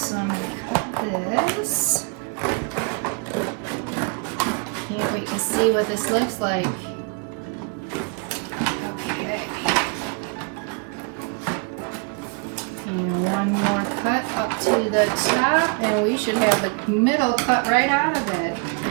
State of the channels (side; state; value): left; quieter; 35.1 dB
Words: I'm gonna cut this. Can't wait to see what this looks like. Okay. And one more cut up to the top, and we should have the middle cut right out of it.